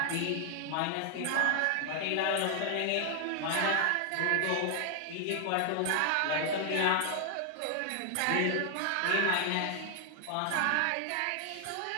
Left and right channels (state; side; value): different; both; correlation 0.00